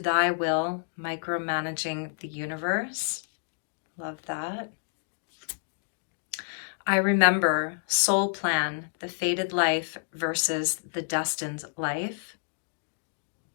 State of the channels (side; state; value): right; silent; digital silence